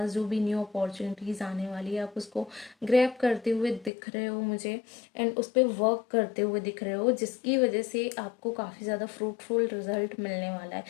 जो भी न्यू अपॉर्चुनिटीज़ आने वाली है आप उसको ग्रैब करते हुए दिख रहे हो मुझे, एंड उस पर वर्क करते हुए दिख रहे हो, जिसकी वजह से आपको काफ़ी ज़्यादा फ्रूटफुल रिजल्ट मिलने वाला है।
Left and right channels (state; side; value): drops out; right; at 3.9 s